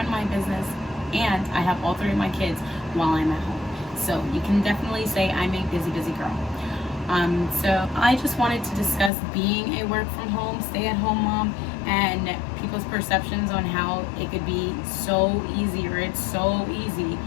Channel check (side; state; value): right; drops out; at 9.1 s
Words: my business, and I have all three of my kids while I'm at home. So you can definitely say I'm a busy girl. So I just wanted to discuss being a work from home, stay at home mom, and people's perceptions on how it could be so easy, or it's so easy